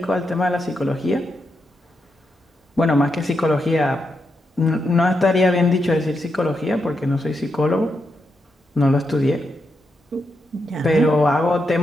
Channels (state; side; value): normal; both; correlation 0.84